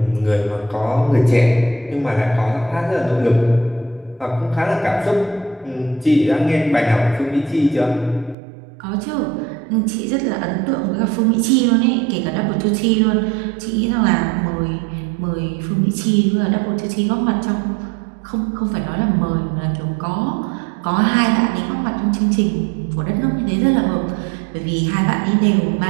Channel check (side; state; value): left; drops out; at 8.3 s